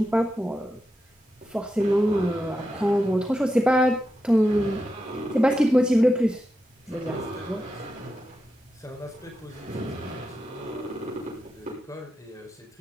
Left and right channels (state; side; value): normal; both; correlation 0.88